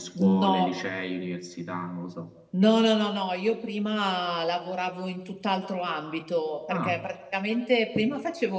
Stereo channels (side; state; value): both; identical; correlation 1.00